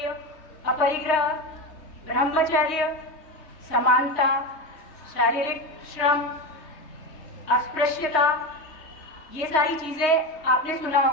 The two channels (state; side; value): late; right; 3.2 ms